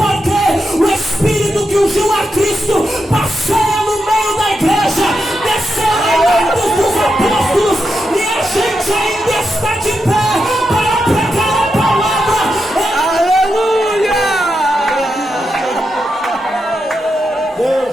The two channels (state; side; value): normal; both; correlation 0.86